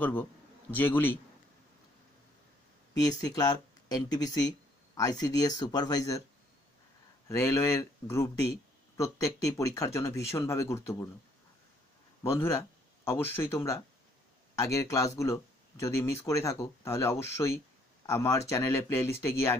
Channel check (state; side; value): normal; both; correlation 0.65